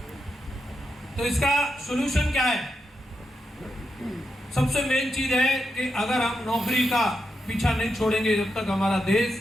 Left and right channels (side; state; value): both; normal; correlation 0.86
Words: तो इसका सॉल्यूशन क्या है? सबसे मेन चीज है कि अगर हम नौकरी का पीछा नहीं छोड़ेंगे, जब तक हमारा देश